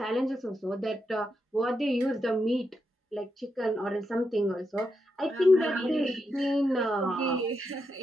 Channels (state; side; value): normal; both; correlation 0.84